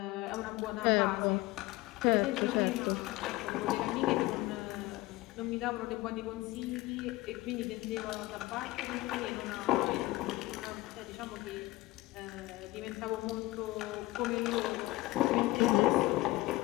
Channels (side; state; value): right; quieter; 19.2 dB